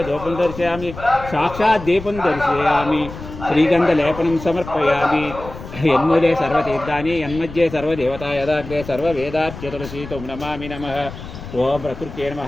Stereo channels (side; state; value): left; noise; rumble, 13 dB below the sound